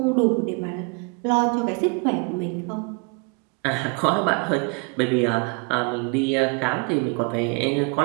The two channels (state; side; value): quieter; left; 34.0 dB